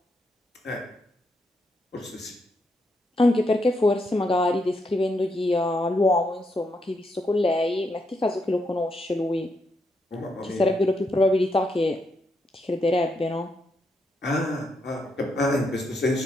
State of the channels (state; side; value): normal; both; correlation 0.80